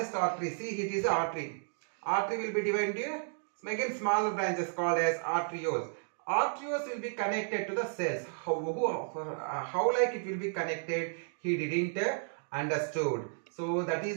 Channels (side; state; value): left; silent; digital silence